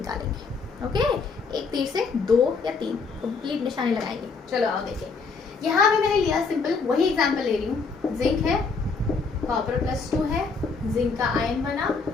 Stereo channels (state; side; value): quieter; right; 4.7 dB